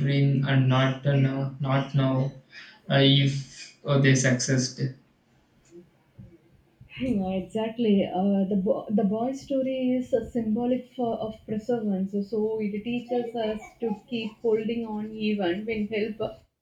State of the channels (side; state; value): both; identical; correlation 1.00